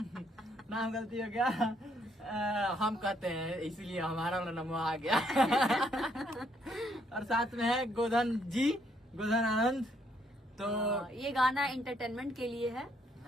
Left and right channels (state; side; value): normal; both; correlation 0.71